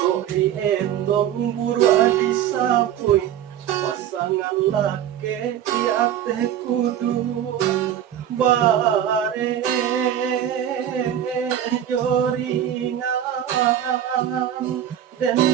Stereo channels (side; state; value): left; quieter; 10.5 dB